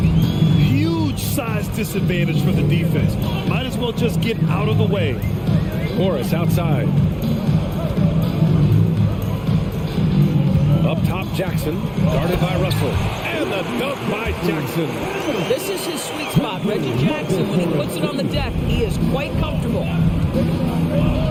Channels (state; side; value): identical; both; correlation 1.00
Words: size disadvantage for the defense. Might as well just get out of the way. Morris outside. Up top, Jackson, guarded by Russell. And the dunk by Jackson. This is his sweet spot. Reggie Jackson, when he puts it on the deck, he is quite comfortable.